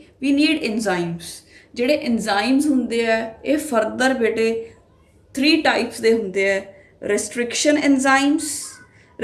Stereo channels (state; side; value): identical; both; correlation 1.00